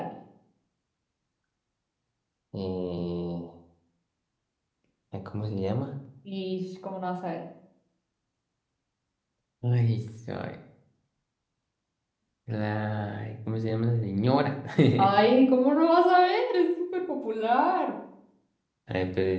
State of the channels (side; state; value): both; identical; correlation 1.00